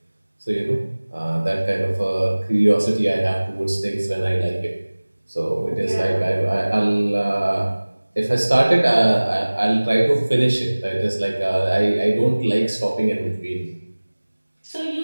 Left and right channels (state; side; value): inverted; both; correlation -1.00